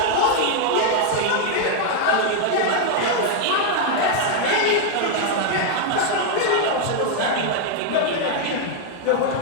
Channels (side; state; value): both; different; correlation 0.00